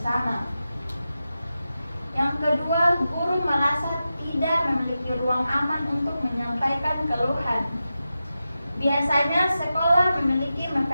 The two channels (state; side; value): inverted; both; correlation -0.92